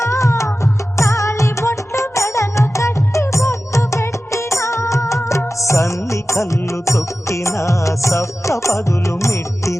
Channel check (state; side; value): normal; both; correlation 0.94